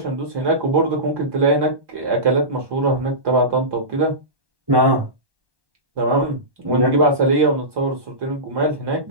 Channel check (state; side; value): late; left; 1.2 ms